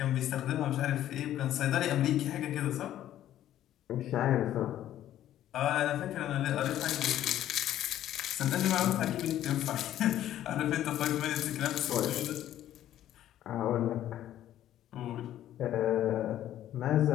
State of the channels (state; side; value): quieter; right; 12.3 dB